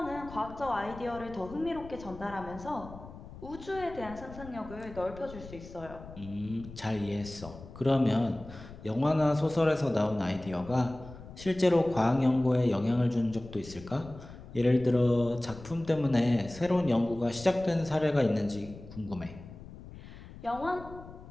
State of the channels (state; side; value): noise; left; rumble, 16 dB below the sound